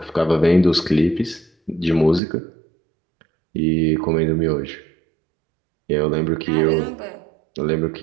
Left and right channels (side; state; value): left; drops out; at 2.2 s